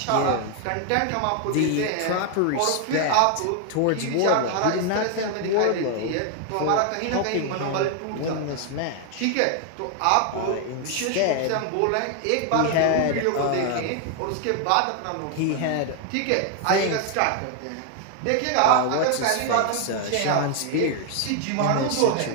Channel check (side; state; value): both; different; correlation 0.00